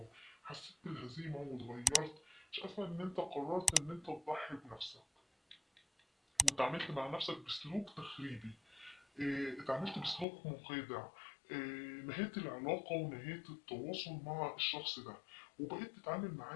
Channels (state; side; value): drops out; right; at 10.2 s